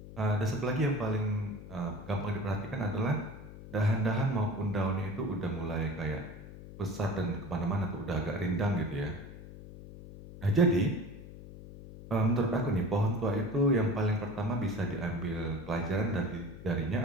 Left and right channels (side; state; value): left; noise; hum, 14 dB below the sound